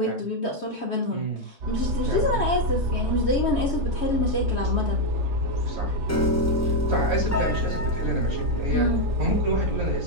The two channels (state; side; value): normal; both; correlation 0.03